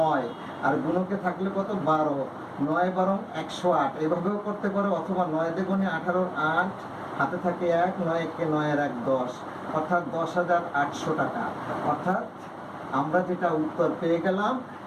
আর গুণকে থাকলে কত? 12। 9 বরং 108, এভাবেও করতে পারো, অথবা 9 দ্বিগুণে 18, 8, হাতে থাকে 1, 9 কে 9 এর 1 10, অর্থাৎ 10,800 টাকা। অর্থাৎ আমরা যেটা উত্তর পেয়ে গেলাম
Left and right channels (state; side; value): identical; both; correlation 1.00